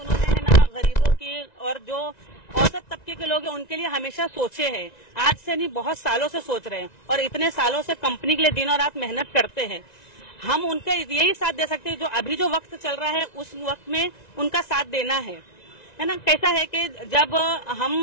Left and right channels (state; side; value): late; right; 1.9 ms